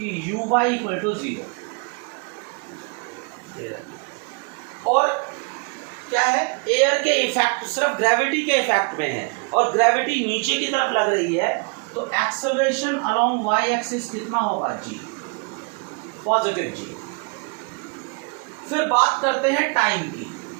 u y इक्वल टू 0, और क्या है, एयर के इफेक्ट सिर्फ ग्रेविटी के इफेक्ट में है और ग्रेविटी नीचे की तरफ लग रही है, तो एक्सेलरेशन अलोंग y एक्सिस कितना होगा, g, पॉजिटिव g। फिर बात करते हैं टाइम की।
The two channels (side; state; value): left; quieter; 34.2 dB